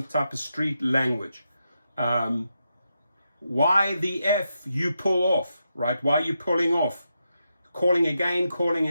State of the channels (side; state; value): both; inverted; correlation -0.85